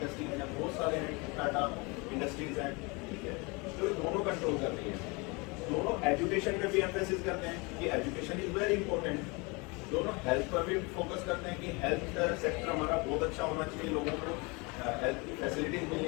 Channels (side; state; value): right; quieter; 28.1 dB